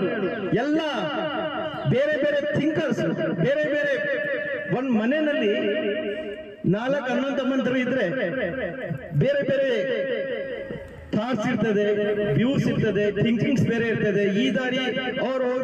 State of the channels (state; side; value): identical; both; correlation 1.00